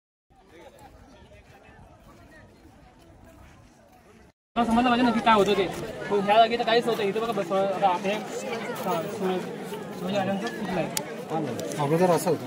समजलं पाहिजे नक्की काय होतं ते. ह्या जागी तर काहीच नव्हतं. इथं बघा आता हे शिवाजी राजांचं कुठलं आहे अगोदर असं होतं.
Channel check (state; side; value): identical; both; correlation 1.00